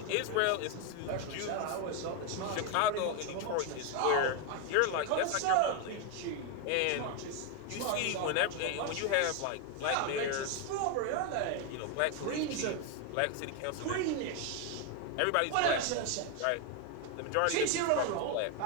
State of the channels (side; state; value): both; different; correlation 0.01